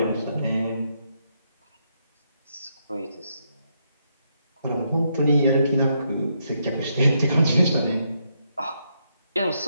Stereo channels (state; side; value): inverted; both; correlation -0.78